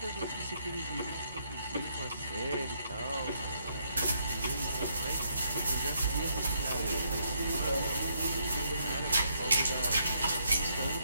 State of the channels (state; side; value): inverted; both; correlation -0.73